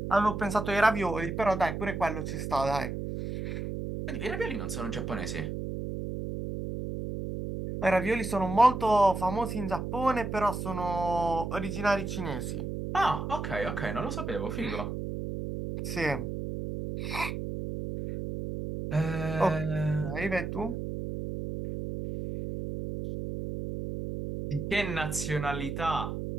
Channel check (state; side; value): noise; right; hum, 4 dB below the sound